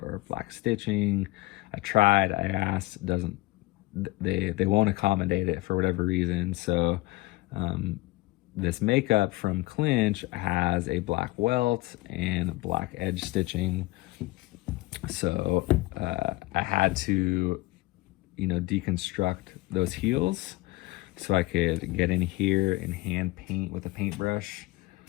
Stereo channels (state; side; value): quieter; right; 20.0 dB